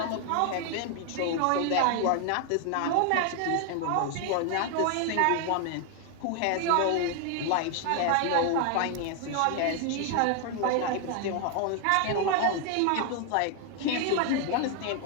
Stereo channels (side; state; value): both; different; correlation 0.00